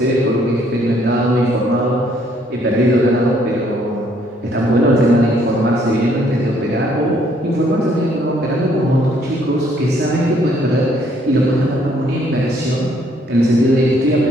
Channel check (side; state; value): both; normal; correlation 0.66